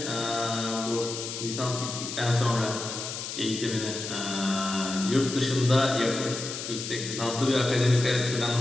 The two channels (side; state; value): left; noise; hiss, 7 dB below the sound